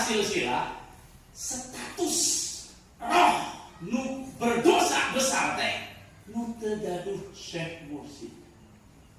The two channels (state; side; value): identical; both; correlation 1.00